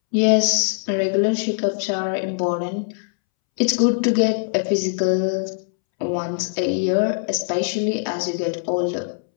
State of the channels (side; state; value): right; silent; 64 dB below the other